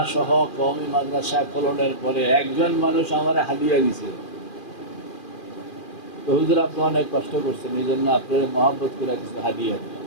সহ কওমি মাদ্রাসা খোলনের পরে একজন মানুষ আমার হাদিয়া দিছে। তো হুজুর, আপনি অনেক কষ্ট করছেন, এই জন্য আপনার মহব্বত করে কিছু হাদিয়া দিলাম।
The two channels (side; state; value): right; late; 2.4 ms